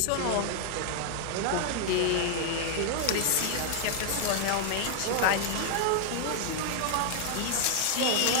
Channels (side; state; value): both; different; correlation 0.00